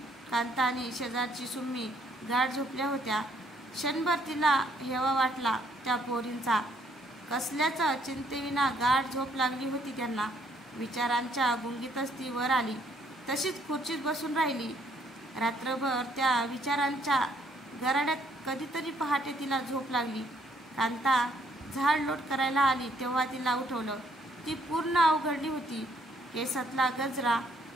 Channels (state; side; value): normal; both; correlation 0.67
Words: कांता आणि शेजारची सुम्मी गाढ झोपल्या होत्या. क्षणभर तिला हेवा वाटला त्या पोरींचा. कसल्याच चिंतेविना गाढ झोप लागली होती त्यांना. विचारांच्या गुंगीतच ती वर आली. तशीच खुर्चीत बसून राहिली. रात्रभर त्या विचारांच्या गराड्यात कधीतरी पहाटे तिला झोप लागली. कांता झाडलोट करायला आली तेव्हा तिला उठवलं. ती पूर्ण अवघडली होती. केसातला गजरा